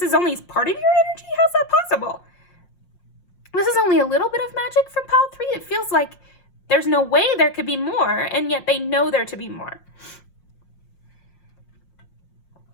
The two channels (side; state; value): right; late; 5.6 ms